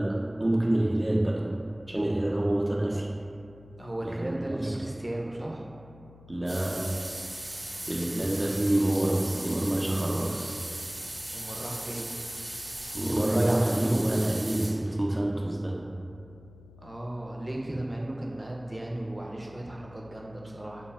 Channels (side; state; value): left; noise; hum, 21 dB below the sound